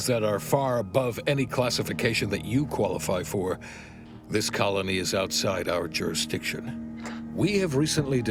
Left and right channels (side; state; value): both; identical; correlation 1.00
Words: that are far above any classification that you qualify for, this colony is outside our jurisdiction. We have recently